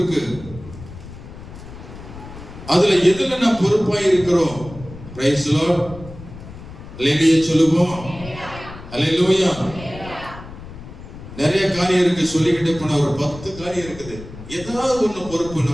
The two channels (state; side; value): noise; left; rumble, 15 dB below the sound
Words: அதுல எதுல நான் பொறுப்பாய் இருக்கிறோம்? Price the Lord. அல்லேலூயா சொல்லுவோம். அல்லேலூயா. நிறைய காரியம் இருக்கு, சொல்லிக்கிட்டே போன ஒரு 10 காரியம் இருக்குது. ஏதாவது ஒண்ணு பொறுப்பு